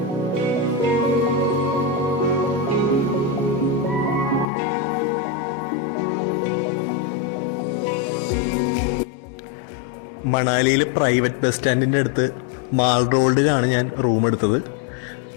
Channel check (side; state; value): right; drops out; at 4.5 s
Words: മണാലിയിൽ പ്രൈവറ്റ് ബസ് സ്റ്റാൻഡിൻ്റെ അടുത്ത് മാൾ റോഡിലാണ് ഞാൻ റൂം എടുത്തത്.